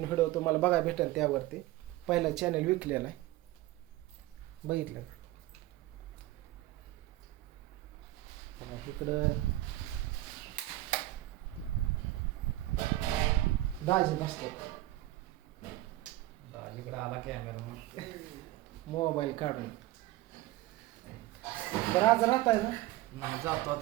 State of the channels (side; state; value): left; quieter; 16.8 dB